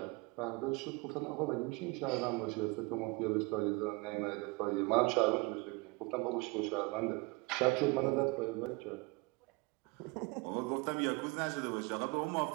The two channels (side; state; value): left; quieter; 27.1 dB